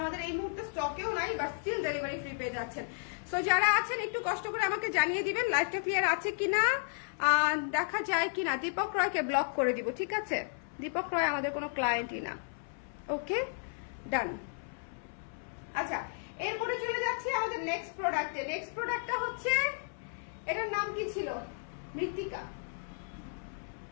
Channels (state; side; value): silent; right; 55 dB below the other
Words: আমাদের এই মুহূর্তে স্টকেও নাই, বাট স্টিল ডেলিভারি ফ্রি পেয়ে যাচ্ছেন। সো যারা আছেন একটু কষ্ট করে আমাকে জানিয়ে দিবেন লাইভটা ক্লিয়ার আছে কিনা, দেখা যায় কিনা। দীপক রয়কে ব্লক করে দিব, ঠিক আছে। দীপক রয় আমাদের কোনো ক্লায়েন্টই না। ওকে, ডান। আচ্ছা, এরপরে চলে যাচ্ছি আমাদের নেক্সট প্রোডাক্টে। নেক্সট প্রোডাক্টটা হচ্ছে, এটার নাম কি ছিল? মৃত্তিকা।